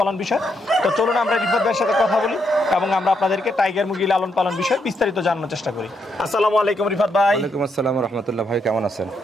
বিষয়। তো চলুন আমরা রিফাত ভাইয়ের সাথে কথা বলি এবং আমরা আপনাদেরকে টাইগার মুরগি লালন পালন বিষয়ে বিস্তারিত জানানোর চেষ্টা করি। আসসালামু আলাইকুম রিফাত ভাই। ওয়ালাইকুম আসসালাম রাহমাতুল্লাহ। ভাই কেমন আছেন?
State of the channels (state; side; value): normal; both; correlation 0.78